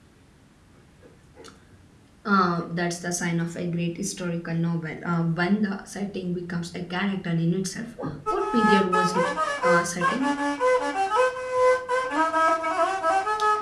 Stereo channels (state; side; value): identical; both; correlation 1.00